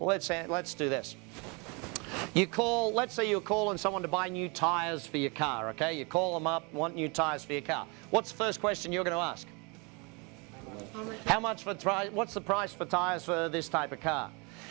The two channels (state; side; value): quieter; left; 30.7 dB